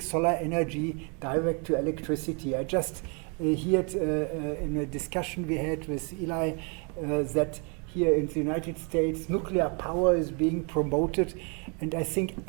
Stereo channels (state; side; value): quieter; left; 35.3 dB